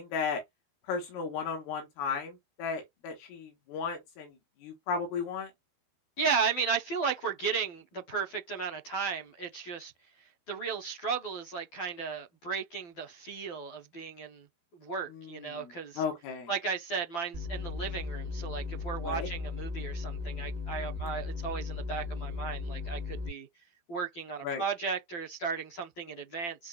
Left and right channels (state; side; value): late; right; 12 ms